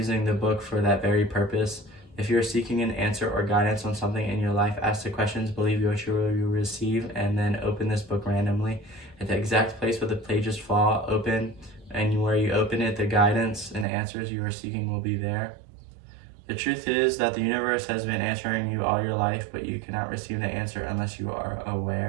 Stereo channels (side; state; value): left; drops out; at 13.9 s